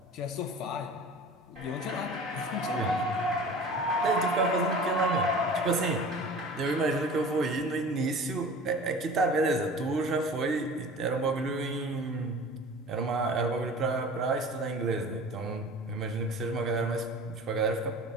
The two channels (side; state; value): both; normal; correlation 0.40